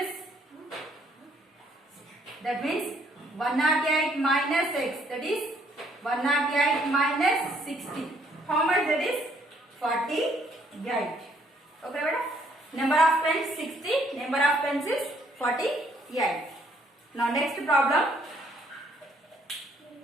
that means 108 minus x, that is 108 minus 60. How much that is? 48. Okay beta. Number of pens 60, number of pencils 48. Now next problem.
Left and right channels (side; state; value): both; normal; correlation 0.66